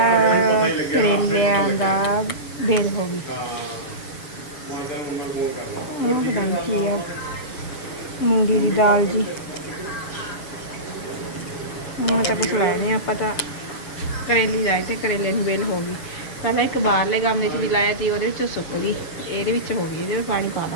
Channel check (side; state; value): right; late; 7.1 ms